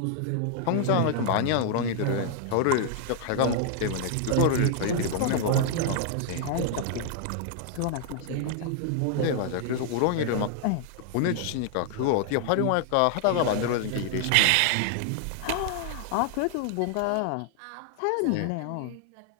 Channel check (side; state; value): both; different; correlation 0.00